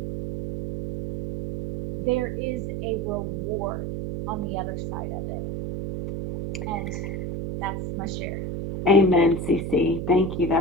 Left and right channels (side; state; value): right; noise; hum, 4 dB below the sound